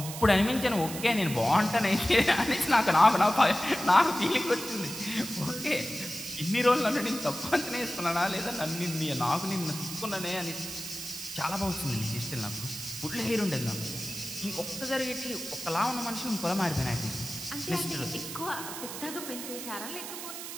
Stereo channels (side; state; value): right; noise; hiss, 9 dB below the sound